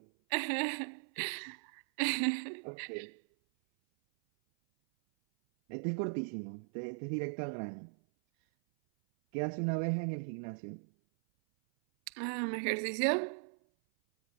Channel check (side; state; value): left; silent; 52 dB below the other